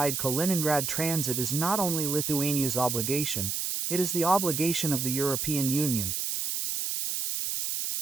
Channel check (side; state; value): right; noise; hiss, 1 dB below the sound